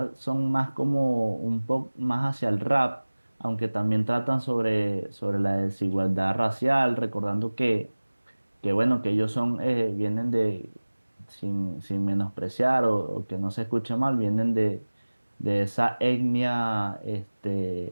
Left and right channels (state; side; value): inverted; both; correlation -1.00